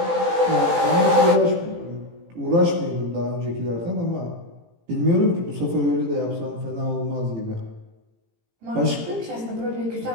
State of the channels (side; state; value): left; late; 18 ms